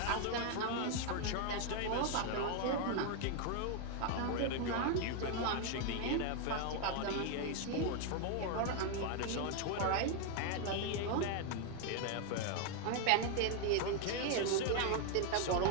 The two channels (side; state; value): both; different; correlation 0.01